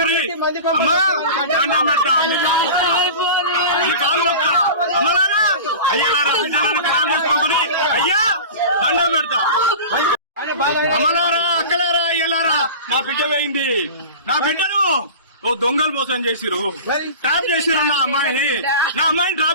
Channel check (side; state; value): both; inverted; correlation -0.33